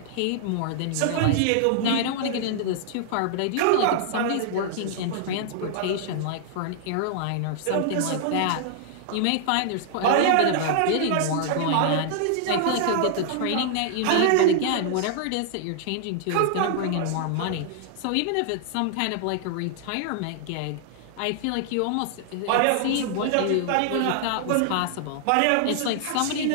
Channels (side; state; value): both; different; correlation -0.01